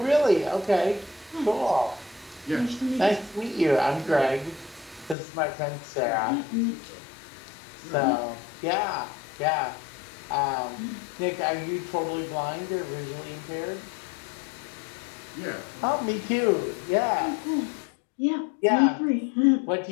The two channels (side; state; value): right; drops out; at 5.2 s